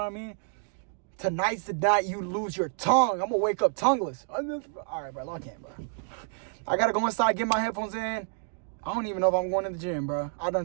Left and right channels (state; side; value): silent; left; 59 dB below the other